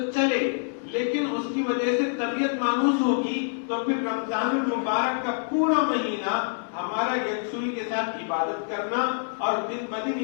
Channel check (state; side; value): silent; right; digital silence